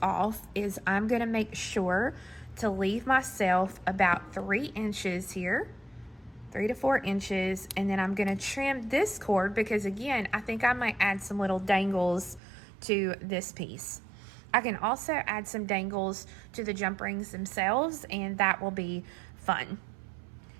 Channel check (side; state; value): left; drops out; at 12.4 s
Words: off is I'm going to make sure to leave myself about 3 inches here, 3 to 4 inches, and then I'm going to trim this cord because, again, I think I might add some little dangles to this piece. I can also add some dangles to the jump rings themselves, and that will be fun.